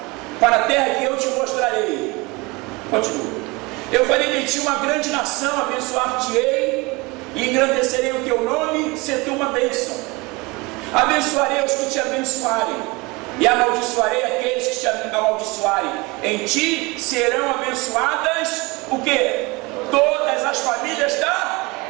para a terra que eu te mostrarei. Continua. Eu farei de ti uma grande nação, abençoar-te-ei e engrandecerei o teu nome, ser tu uma bênção. Abençoarei os que te abençoarem, e amaldiçoarei aqueles que te amaldiçoarem. Em ti serão abençoadas o quê? Todas as famílias da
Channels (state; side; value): quieter; left; 25.1 dB